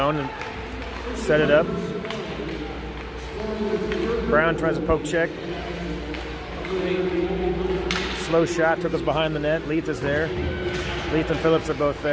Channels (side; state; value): both; identical; correlation 1.00